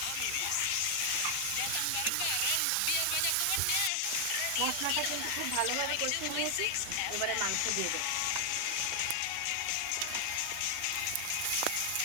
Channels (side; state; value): both; different; correlation 0.00